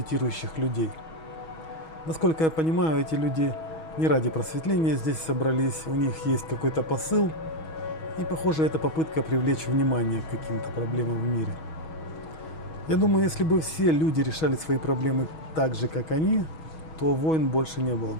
людей. Насколько я понимаю, эти люди не ради просветления здесь собрались. У них есть какой-то посыл. И похоже, это попытка привлечь внимание к каким-то проблемам в мире. Я думаю, если бы все люди решали свои проблемы так же, как они, то войн больше не было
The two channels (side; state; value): right; late; 6.2 ms